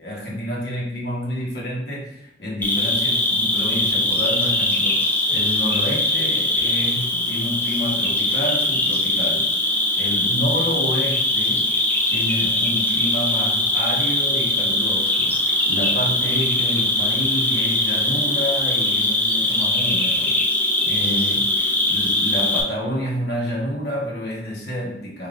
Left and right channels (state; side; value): normal; both; correlation 0.08